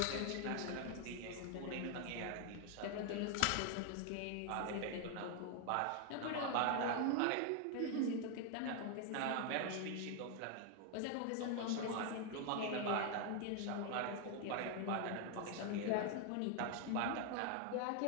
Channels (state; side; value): different; both; correlation 0.01